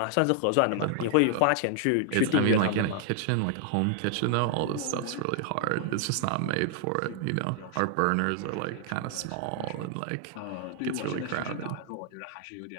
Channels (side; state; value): both; different; correlation 0.00